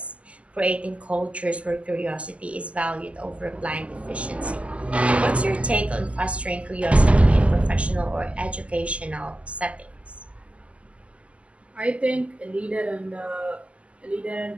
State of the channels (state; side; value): late; left; 0.061 ms